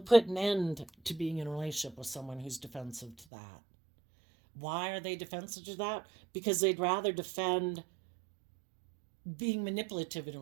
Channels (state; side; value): drops out; left; at 3.2 s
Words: an end to being in a relationship with someone who's defensive to that. Why are they defensive to that? Because they'd rather defend being manipulative in a